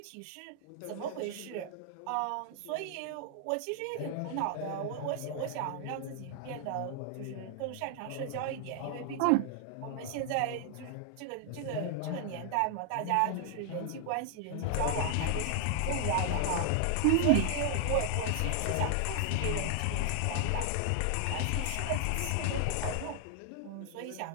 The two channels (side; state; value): both; different; correlation 0.00